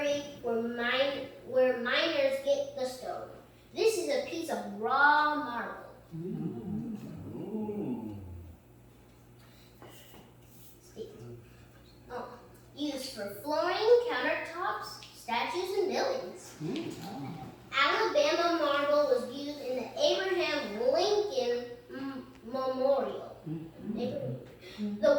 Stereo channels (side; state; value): both; identical; correlation 1.00